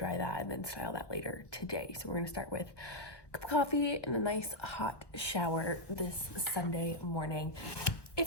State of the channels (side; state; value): right; late; 1.1 ms